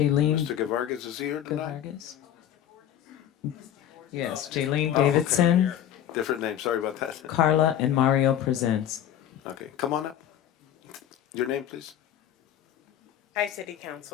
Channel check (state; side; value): quieter; right; 10.7 dB